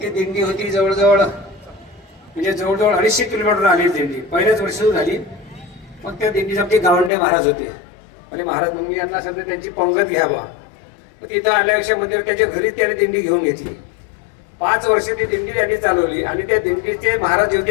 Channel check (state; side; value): drops out; right; at 7.1 s